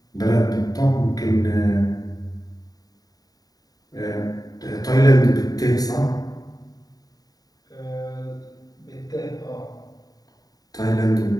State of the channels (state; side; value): late; right; 0.18 ms